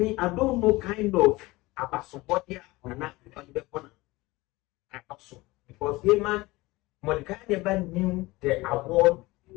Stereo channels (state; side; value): quieter; right; 20.9 dB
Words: I don't know kind of Abasobodia or not on the corner. Also, because Haman, Mordecai never knew the award he